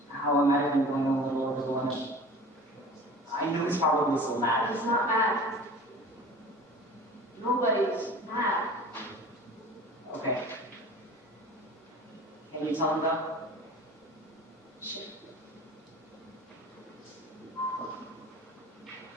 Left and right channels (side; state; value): both; normal; correlation 0.41